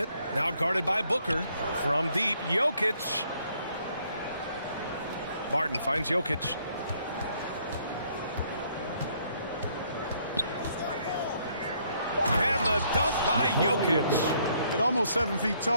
now guarded by Booker. From deep, Jokic. Barton finds Jokic. And the dunk by Jokic. At almost 7 feet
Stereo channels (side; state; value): both; inverted; correlation -0.67